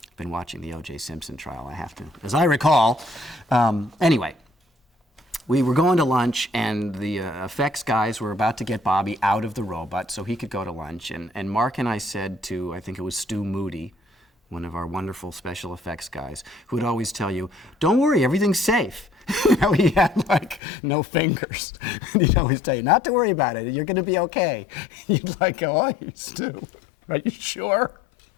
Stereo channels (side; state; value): right; drops out; at 20.6 s